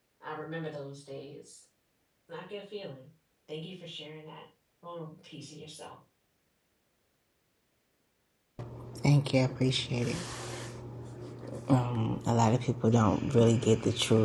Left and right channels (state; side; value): identical; both; correlation 1.00